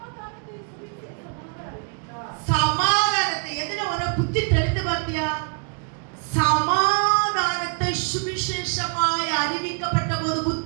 சமாதானத்தை. எதுல உன புத்தி தெரிந்து பார்த்தியா? சமாதானத்தை சுவிசேஷமாய் அறிவிக்கப்பட்ட போது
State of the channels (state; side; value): quieter; left; 39.2 dB